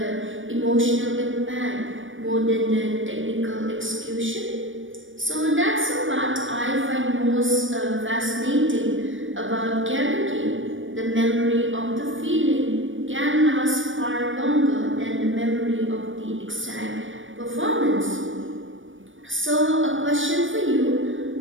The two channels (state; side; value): late; left; 0.57 ms